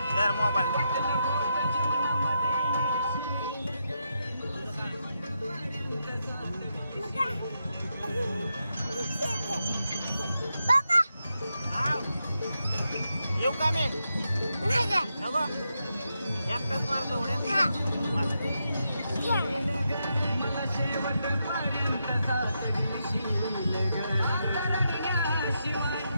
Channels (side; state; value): both; inverted; correlation -0.84